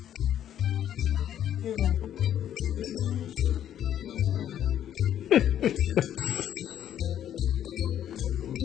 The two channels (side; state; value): right; quieter; 10.6 dB